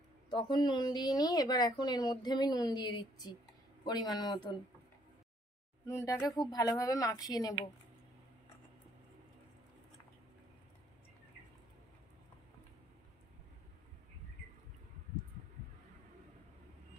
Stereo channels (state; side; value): normal; both; correlation 0.66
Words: তখন নুন দিইনি, এবার এখন এর মধ্যে আমি নুন দিয়ে দিচ্ছি পরিমাণ মতন। নুনটাকে খুব ভালোভাবে মাখিয়ে নেব।